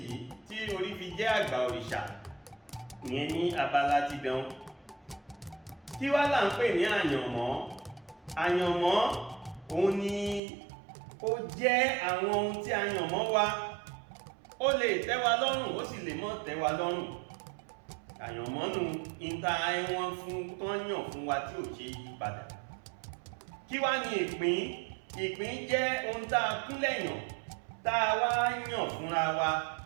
tí orí fi jẹ́ àgbà òrìṣà. Ìyẹn ní abala ti dán. Kí wá là ń pè ní àyànmọ́? Àyànmọ́ òun ni ó jẹ́ àwọn ohun tí àyànmọ́ wa. Ó lè tẹ́ wa lọ́rùn, ó sì lè mọ́ tẹ́ wa lọ́rùn. Àyànmọ́ nu ìta ẹ̀wọ̀n fún tán yàn fún wa tí ò ṣe yí padà. Kí wá ní ìpín? Ìpín jẹ́ ohun tá a kúnlẹ̀ yàn, tá a wá yàn fúnra wa.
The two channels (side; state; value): left; drops out; at 10.4 s